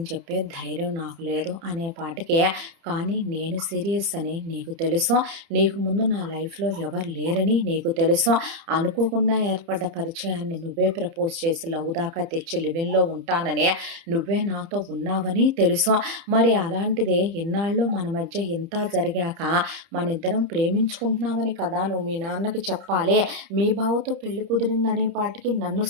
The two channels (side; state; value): left; late; 30 ms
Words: చెప్పే ధైర్యం నాకు లేదు అనే పాటికే, కానీ నేను సీరియస్ అని నీకు తెలుసు, నీకు ముందు నా లైఫ్లో ఎవరు లేరని నీకు తెలుసు, అనుకోకుండా ఏర్పడ్డ పరిచయాన్ని నువ్వే ప్రపోజ్ చేసి లవ్ దాకా తెచ్చి లివింగ్లో ఉంటానని నువ్వే నాతో ఉన్నావని తెలుసు, మరి అలాంటిదే ఇన్నాళ్ళు మన మధ్య ఇంత జరిగాక మన ఇద్దరం ప్రేమించుకుంటున్నామని కదా నువ్వు మీ నాన్నకి చెప్పాలి, మీ బావతో పెళ్లి కుదిరిందని అనేపాటికి నన్ను